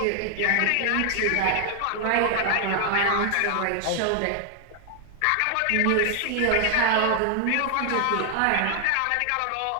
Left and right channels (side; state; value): both; different; correlation 0.00